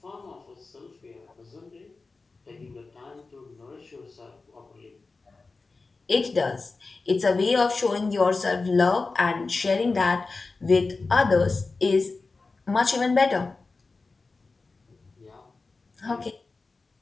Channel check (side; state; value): right; quieter; 3.9 dB